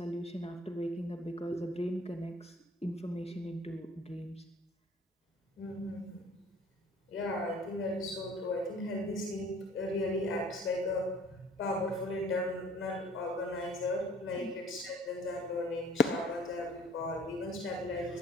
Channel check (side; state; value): both; normal; correlation 0.52